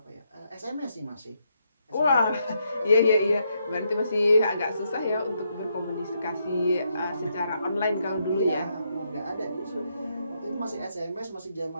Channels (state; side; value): inverted; both; correlation -0.78